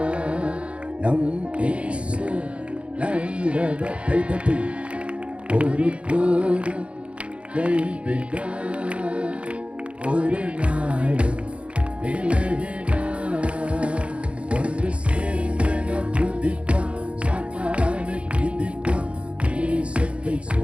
நம் இயேசு நல்லவர். கைதட்டி ஒரு போதும் கைவிடார், ஒரு நாளும் விலகினார். ஒன்று சேர்ந்து நாம் துதிப்போம், சாத்தானை மிதிப்போம், தேசத்தை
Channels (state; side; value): late; left; 0.060 ms